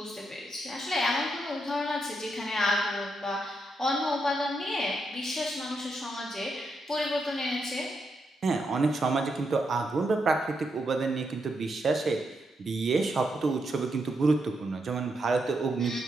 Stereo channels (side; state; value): both; normal; correlation 0.81